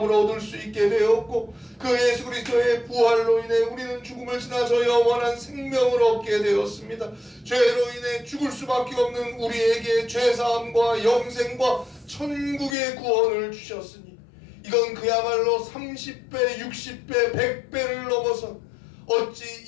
얻을 수 있게 되었고 그 예수 그리스도의 부활로 인해 우리는 죽음을 지나서 영원한 생명을 얻게 되었습니다. 죄로 인해 죽을 수밖에 없는 우리에게 죄사함과 영생과 천국의 구원을 주셨으니 이건 그야말로 30배, 60배, 100배를 넘어서 어찌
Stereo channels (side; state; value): right; drops out; at 12.8 s